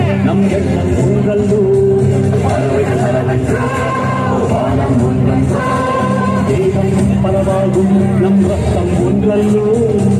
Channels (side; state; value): both; identical; correlation 1.00